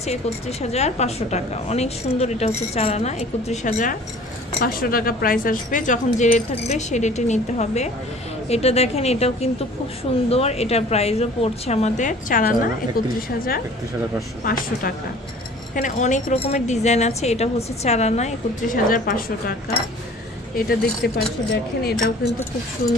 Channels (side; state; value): both; normal; correlation 0.48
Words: 31500 টাকা। অনেক সুন্দর। এটা হচ্ছে 4 আনা, 31500 টাকা প্রাইস আসবে। যখন যে রেট থাকবে সেই রেটে নিতে হবে। এটা দেখেন, এটাও কিন্তু খুব সুন্দর। এটার প্রাইসও পড়ছে আমাদের 4 আনা 31500 টাকা। এখানে অনেক রকমের ডিজাইন আছে। এটা হচ্ছে 4 আনা 31500 টাকা। এটা দেখতে পাচ্ছি, দেখেন এটাও কিন্তু খুব